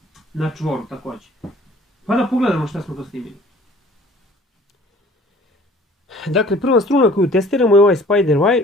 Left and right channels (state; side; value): normal; both; correlation 0.51